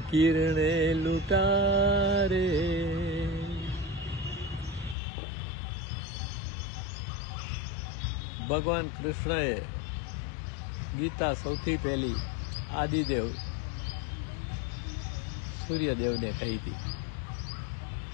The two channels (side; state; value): right; drops out; at 5.0 s